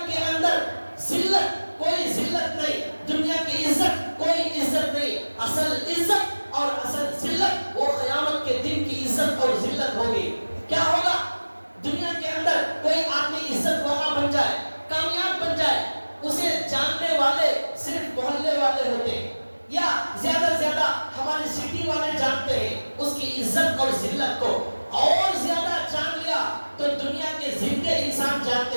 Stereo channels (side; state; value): both; inverted; correlation -1.00